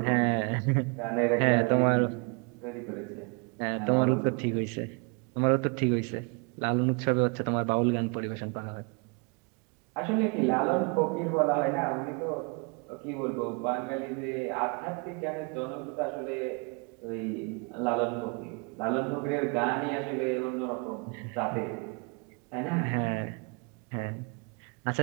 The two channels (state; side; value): quieter; left; 33.8 dB